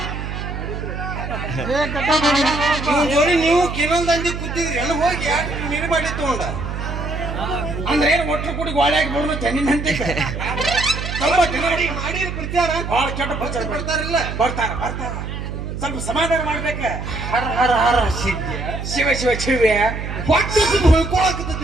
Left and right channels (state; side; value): noise; right; hum, 6 dB below the sound